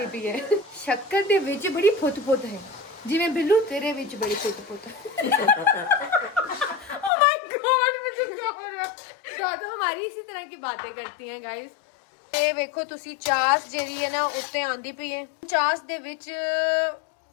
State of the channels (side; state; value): right; drops out; at 7.1 s